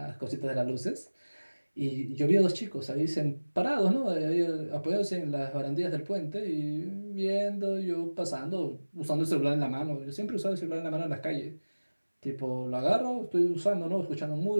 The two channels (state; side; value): inverted; both; correlation -1.00